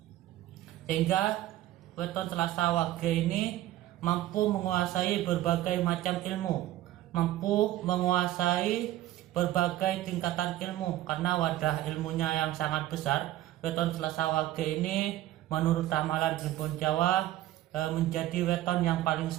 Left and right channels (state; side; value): quieter; left; 14.5 dB